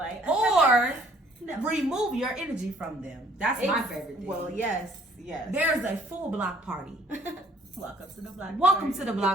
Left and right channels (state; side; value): normal; both; correlation 0.60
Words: or remove your energy from them. That's my favorite thing. Well, yes. There's a full block party. Welcome to the block party. Welcome to the